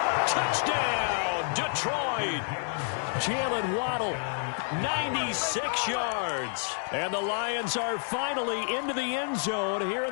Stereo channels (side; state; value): right; silent; digital silence